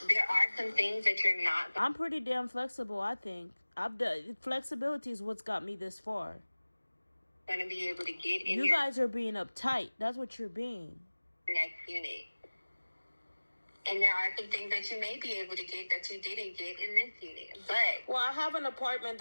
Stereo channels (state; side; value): inverted; both; correlation -1.00